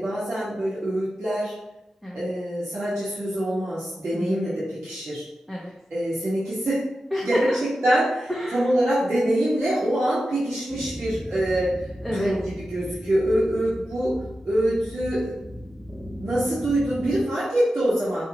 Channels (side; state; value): both; normal; correlation 0.91